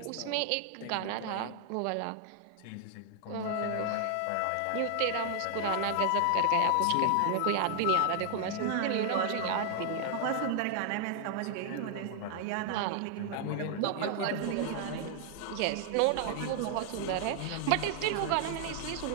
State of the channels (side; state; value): both; different; correlation 0.00